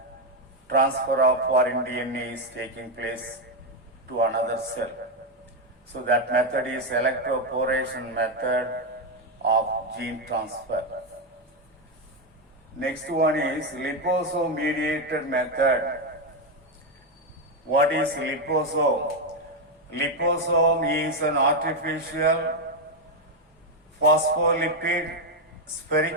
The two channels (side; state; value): both; normal; correlation 0.05